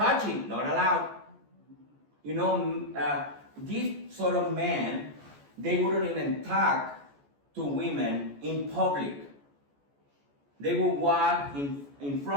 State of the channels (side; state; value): left; late; 14 ms